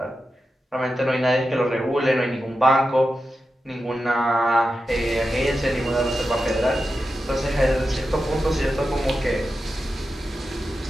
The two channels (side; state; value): both; normal; correlation 0.90